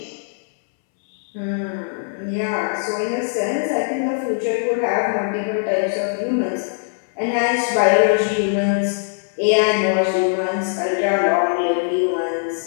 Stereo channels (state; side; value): silent; right; 63 dB below the other